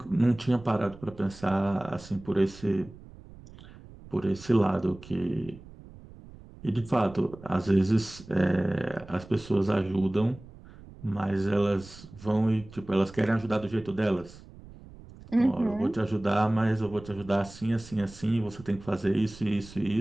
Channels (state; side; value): noise; right; rumble, 19 dB below the sound